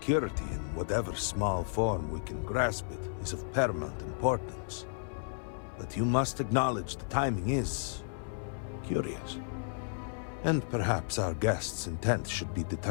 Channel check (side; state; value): right; silent; 56 dB below the other